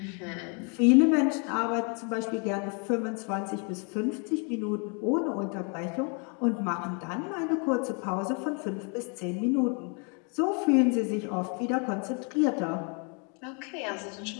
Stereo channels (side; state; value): right; quieter; 36.8 dB